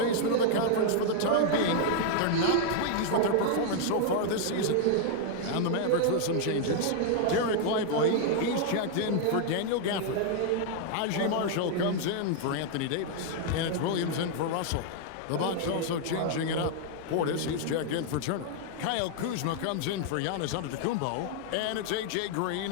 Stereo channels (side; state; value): both; different; correlation 0.00